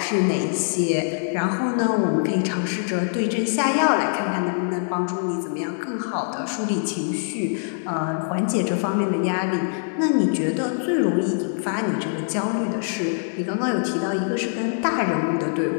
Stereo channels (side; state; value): right; silent; digital silence